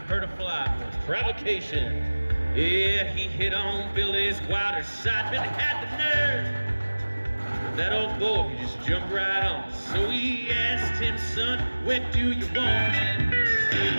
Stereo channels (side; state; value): both; inverted; correlation -1.00